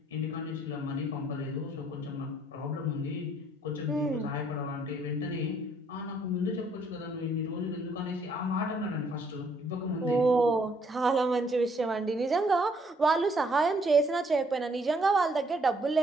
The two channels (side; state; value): both; normal; correlation 0.67